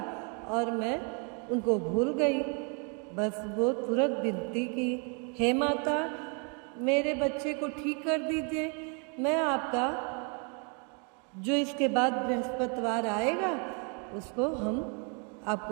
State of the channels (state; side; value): quieter; left; 36.9 dB